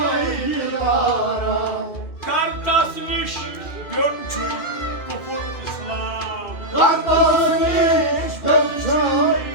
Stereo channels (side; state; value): right; late; 2.6 ms